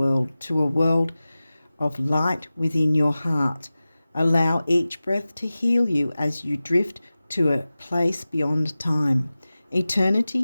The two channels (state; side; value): inverted; both; correlation -0.96